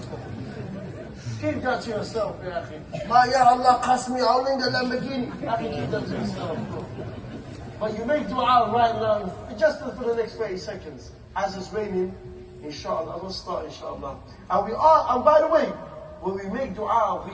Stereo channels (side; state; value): both; identical; correlation 1.00